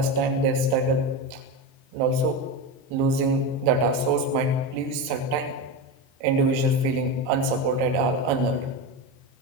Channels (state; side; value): late; left; 23 ms